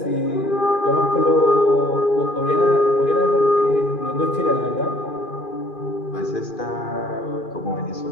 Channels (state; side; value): late; right; 2.4 ms